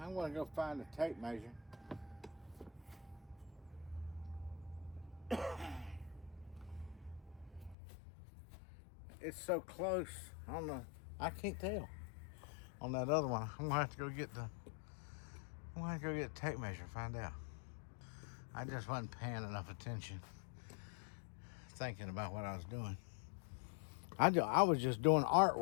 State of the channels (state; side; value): drops out; right; at 7.8 s